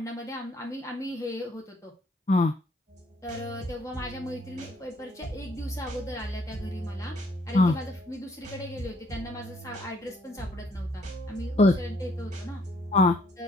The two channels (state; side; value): normal; both; correlation 0.66